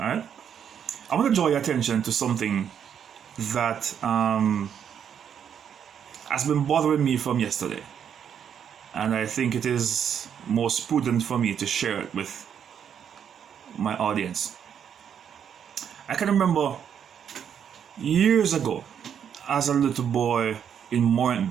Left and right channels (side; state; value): left; quieter; 8.3 dB